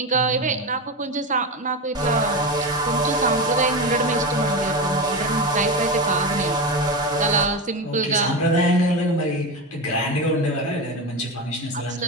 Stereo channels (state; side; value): normal; both; correlation 0.19